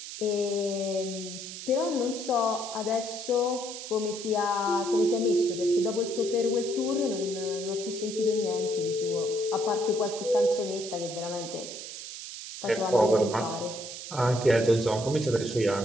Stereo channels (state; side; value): noise; right; hiss, 10 dB below the sound